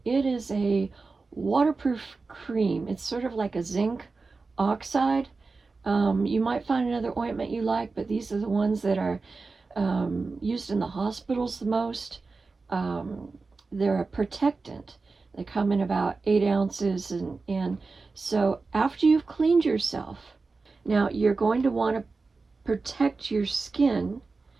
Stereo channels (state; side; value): quieter; left; 4.0 dB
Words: It is a waterproof cream. It's sort of like a zinc oxide. You might find another ointment you like, but these are the ones that are used in the hospitals the most. They're a protectant. They come in about 8 ounces, and so after you've cleaned yourself, now you're going to want to protect your skin,